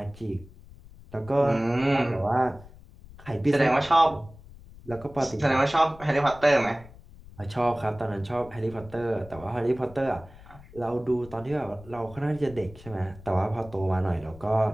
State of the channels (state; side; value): noise; left; rumble, 20 dB below the sound